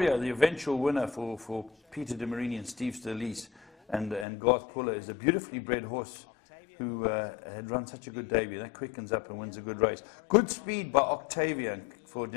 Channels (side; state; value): right; drops out; at 4.2 s